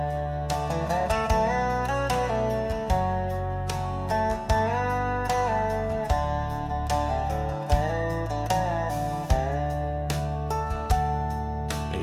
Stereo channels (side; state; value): both; identical; correlation 1.00